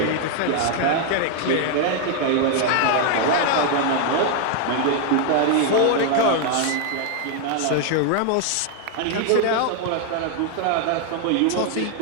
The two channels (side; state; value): both; different; correlation 0.00